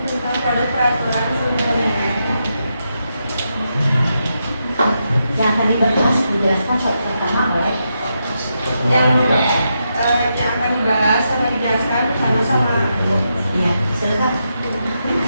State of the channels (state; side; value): inverted; both; correlation -0.84